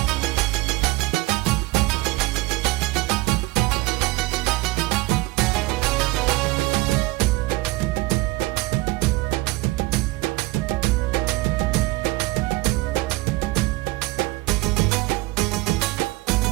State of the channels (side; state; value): left; quieter; 20.7 dB